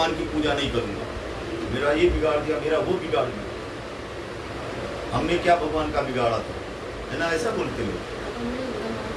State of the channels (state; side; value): identical; both; correlation 1.00